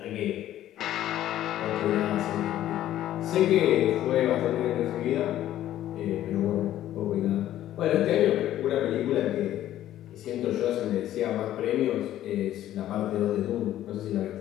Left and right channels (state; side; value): quieter; right; 12.8 dB